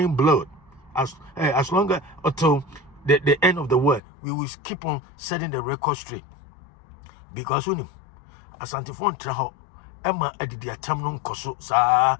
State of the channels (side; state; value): right; drops out; at 4.0 s